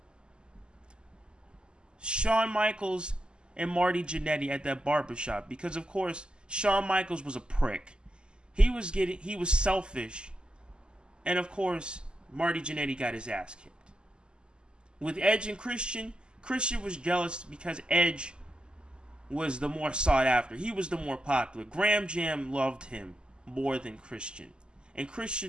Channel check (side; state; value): left; late; 0.049 ms